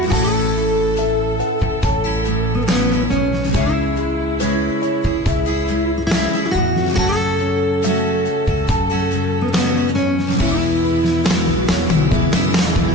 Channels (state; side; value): normal; both; correlation 0.41